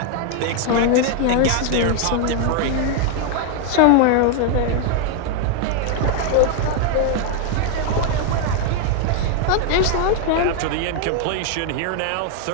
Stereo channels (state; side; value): different; both; correlation 0.00